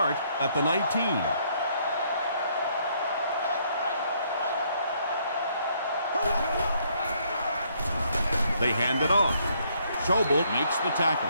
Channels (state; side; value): inverted; both; correlation -0.69